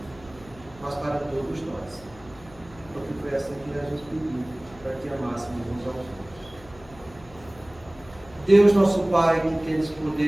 mas para todos nós, porque foi assim que Jesus pediu, para que amássemos uns aos outros. Deus nosso Pai, que tens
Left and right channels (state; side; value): noise; left; hum, 22 dB below the sound